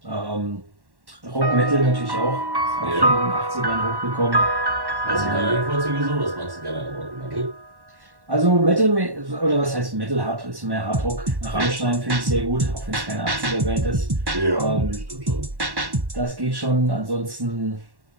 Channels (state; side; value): late; left; 1.1 ms